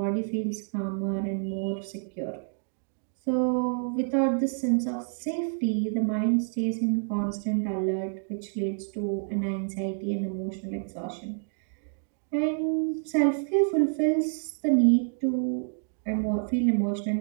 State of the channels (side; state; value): left; silent; digital silence